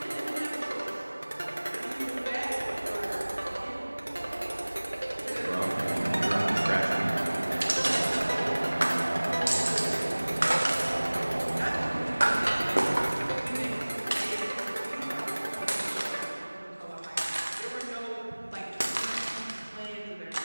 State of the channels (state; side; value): inverted; both; correlation -1.00